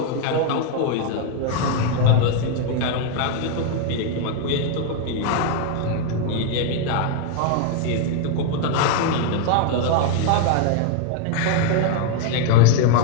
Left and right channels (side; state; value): both; different; correlation 0.00